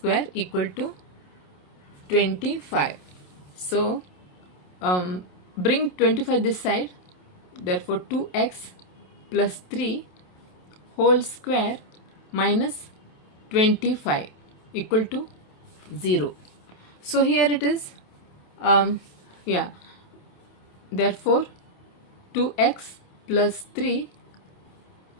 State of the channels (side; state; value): right; late; 27 ms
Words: equal to 25. So bring 25 this side. Therefore 2x plus 3 whole square minus 25 equal to 0. So here it is. Therefore 2x plus 3